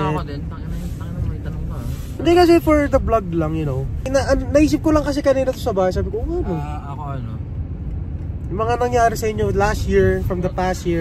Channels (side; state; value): both; identical; correlation 1.00